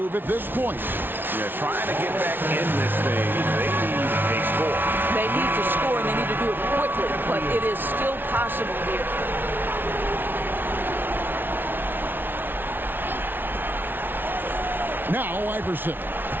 at this point? Yeah, trying to get back in this thing. They need a score. They need to score, and they need to do it quickly, but it is still possible here. Now Iverson.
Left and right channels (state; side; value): late; left; 0.098 ms